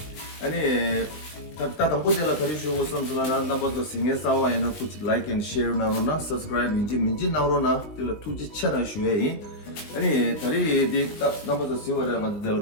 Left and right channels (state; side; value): late; right; 19 ms